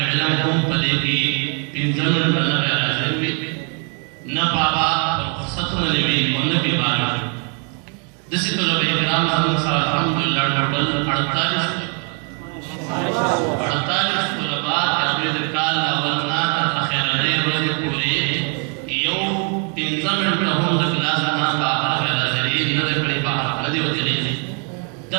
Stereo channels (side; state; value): left; quieter; 39.4 dB